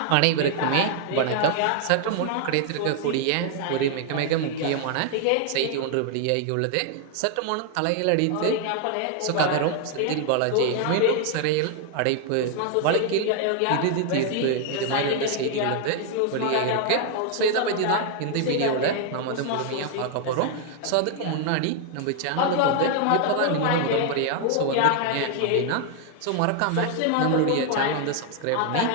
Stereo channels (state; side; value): different; both; correlation 0.00